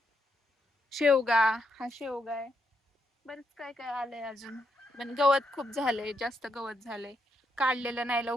शेवगा, हा शेवगा आहे. बरंच काय काय आलंय अजून. पण गवत खूप झालंय, जास्त गवत झालंय. काढलेलं नाही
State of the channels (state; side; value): normal; both; correlation 0.80